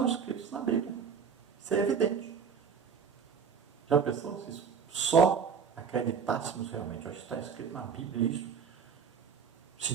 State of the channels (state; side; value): quieter; left; 6.5 dB